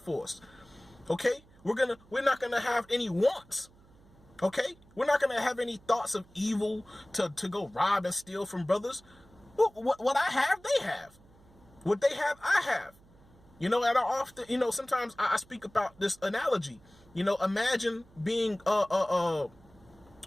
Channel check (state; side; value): noise; right; hum, 27 dB below the sound